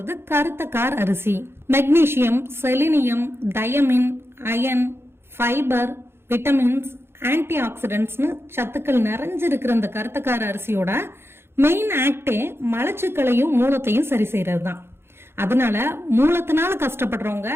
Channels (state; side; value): late; left; 0.12 ms